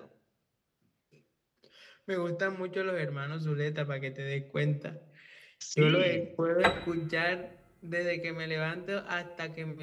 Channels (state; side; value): identical; both; correlation 1.00